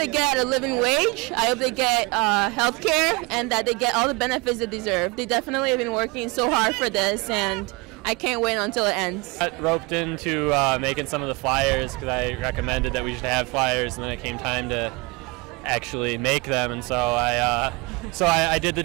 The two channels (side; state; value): left; quieter; 26.1 dB